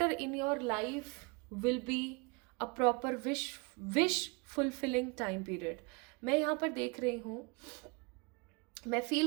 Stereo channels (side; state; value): left; quieter; 29.9 dB